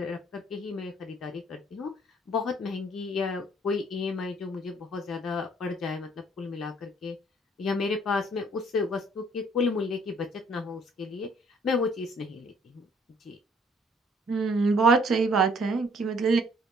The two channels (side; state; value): both; normal; correlation 0.61